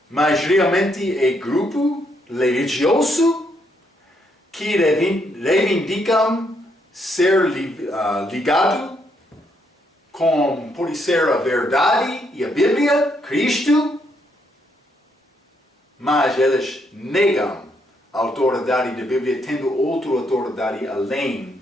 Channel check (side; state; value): both; normal; correlation 0.74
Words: mas realmente é grupo religioso que reivindicam ser ligado com, pode ser, a verdade e a Bíblia, Cristo, mas eles negam a autoridade da Bíblia, tendo outra autoridade além